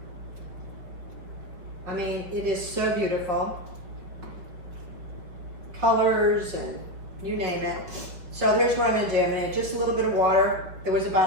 I mean, it is so beautiful. Colors and you name it. So here's what I'm gonna do. I'm gonna add just a little bit of water. There was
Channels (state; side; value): late; left; 5.4 ms